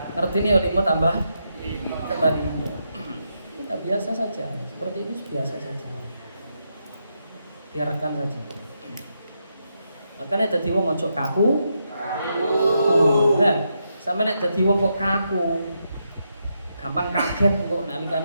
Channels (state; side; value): inverted; both; correlation -0.82